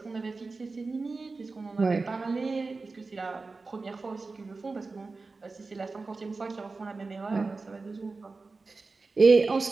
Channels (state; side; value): quieter; left; 3.9 dB